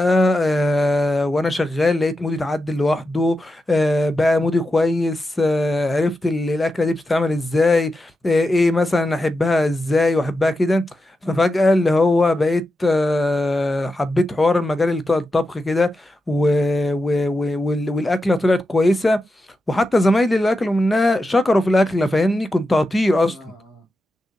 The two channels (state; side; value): normal; both; correlation 0.89